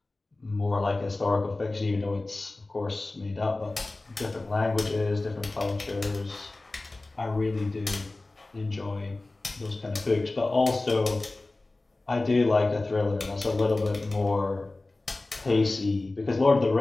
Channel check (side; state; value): right; quieter; 3.0 dB